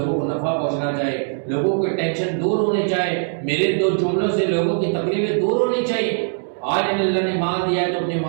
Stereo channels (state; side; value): silent; left; 65 dB below the other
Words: کو نفع پہنچنا چاہیے، لوگوں کو ٹینشن دور ہونی چاہیے، میرے دو جملوں سے لوگوں کی تکلیفیں دور ہونی چاہیے۔ آج اللہ نے مال دیا ہے تو اپنے